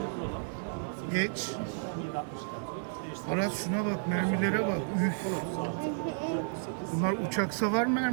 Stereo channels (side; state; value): left; silent; digital silence